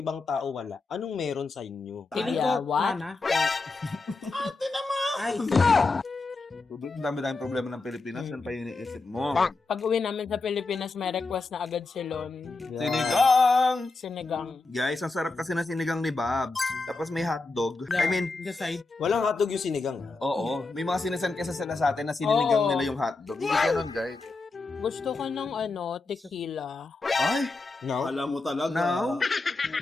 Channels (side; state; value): right; quieter; 3.7 dB